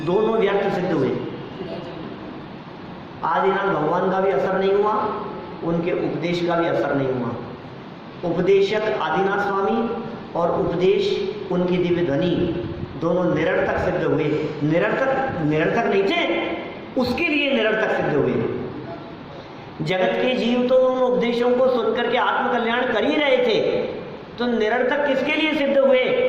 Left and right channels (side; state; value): both; identical; correlation 1.00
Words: दोनों व्यर्थ सिद्ध हुए। आदिनाथ भगवान का भी असर नहीं हुआ, उनके उपदेश का भी असर नहीं हुआ। उपदेशक आदिनाथ स्वामी और उपदेश उनकी दिव्य ध्वनि दोनों निरर्थक सिद्ध हुए। निरर्थक नहीं थे, उसके लिए निरर्थक सिद्ध हुए। जगत के जीव तो उन उपदेशों को सुनकर के आत्मकल्याण कर ही रहे थे, तो निरर्थक किसके लिए सिद्ध हुए?